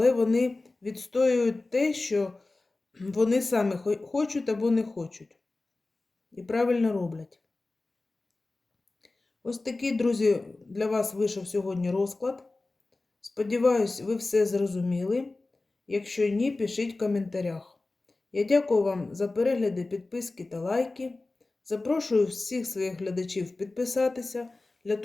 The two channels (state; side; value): quieter; right; 3.2 dB